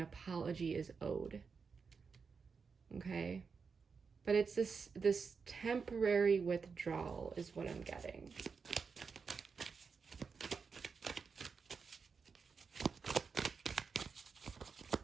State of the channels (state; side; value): quieter; left; 5.4 dB